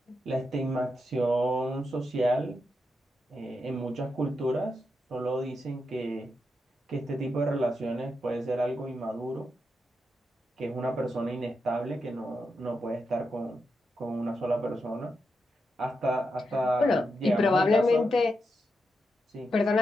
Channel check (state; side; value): normal; both; correlation 0.85